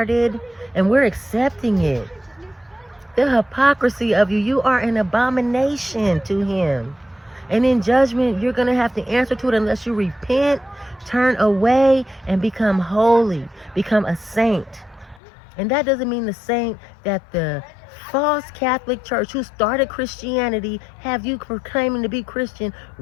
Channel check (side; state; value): right; drops out; at 15.2 s